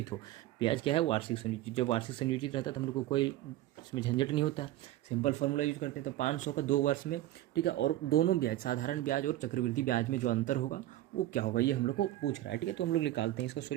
हो। ब्याज क्या है, वार्षिक संयोजित। जब वार्षिक संयोजित रहता है तो हम लोग को कोई इसमें झंझट नहीं होता है, सिंपल फार्मूला यूज करते हैं। तो 500 का 2 वर्ष में, ठीक है, और दोनों ब्याज साधारण ब्याज और चक्रवृद्धि ब्याज में जो अंतर होगा वो क्या होगा, ये हम लोग को पूछ रहा है, ठीक है। तो हम लोग निकालते हैं इसका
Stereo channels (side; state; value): left; quieter; 14.8 dB